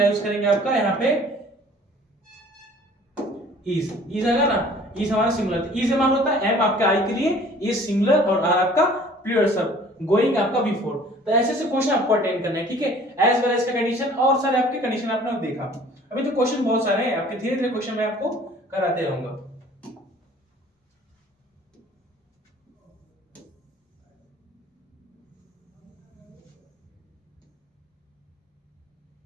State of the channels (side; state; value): both; normal; correlation 0.51